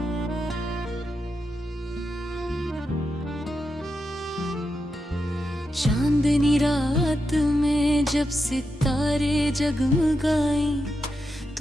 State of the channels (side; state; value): both; normal; correlation 0.87